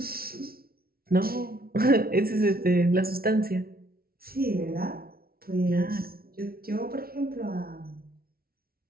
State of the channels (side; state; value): left; late; 0.44 ms